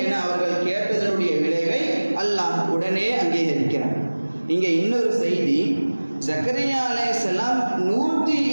என அவர்கள் கேட்டதனுடைய விளைவை அல்லாஹ் உடனே அங்கீகரிக்கிறார். இங்கே இன்னொரு செய்தி, ஜக்கரியா அலைஹிஸ்ஸலாம்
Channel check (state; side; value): inverted; both; correlation -1.00